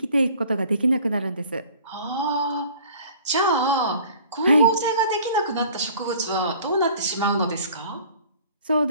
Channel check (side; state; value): both; inverted; correlation -0.50